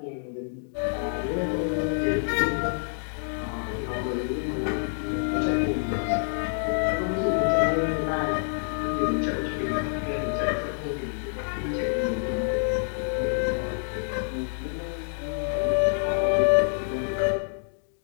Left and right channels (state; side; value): silent; right; digital silence